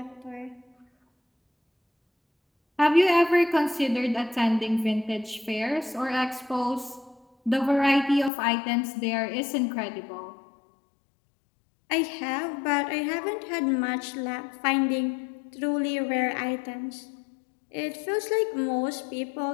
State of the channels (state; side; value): drops out; right; at 8.3 s